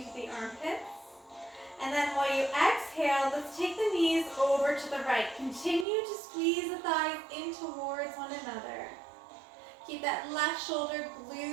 the armpits. And then while you exhale, let's take the knees over to the right. Continue to squeeze the thighs in towards one another. Keep that left shoulder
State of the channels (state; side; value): drops out; left; at 5.9 s